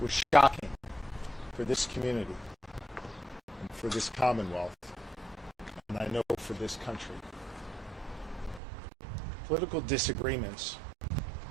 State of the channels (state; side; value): drops out; left; at 8.6 s